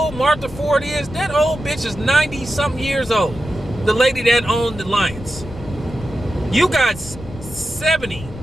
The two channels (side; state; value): left; noise; rumble, 14 dB below the sound